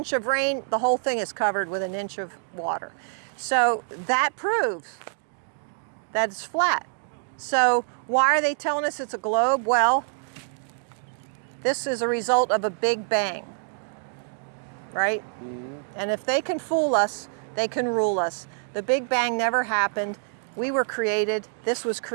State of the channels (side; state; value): left; silent; digital silence